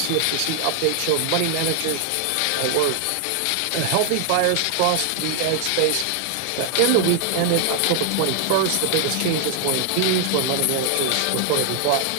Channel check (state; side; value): different; both; correlation 0.00